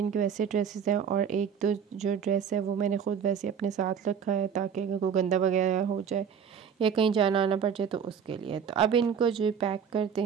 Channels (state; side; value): quieter; left; 7.4 dB